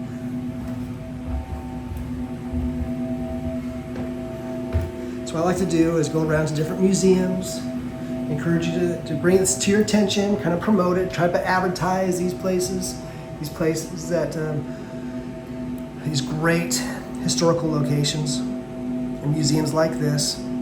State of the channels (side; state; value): both; identical; correlation 1.00